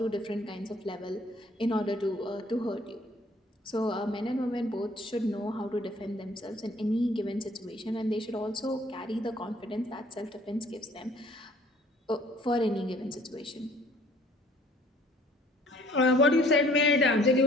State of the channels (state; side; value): normal; both; correlation 0.57